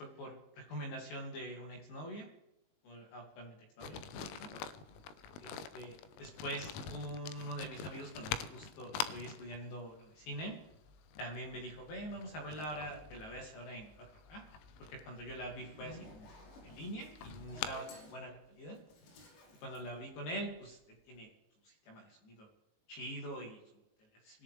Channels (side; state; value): right; late; 19 ms